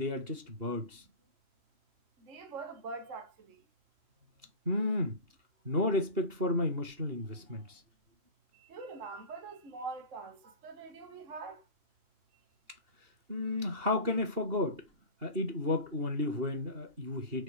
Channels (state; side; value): late; left; 2.8 ms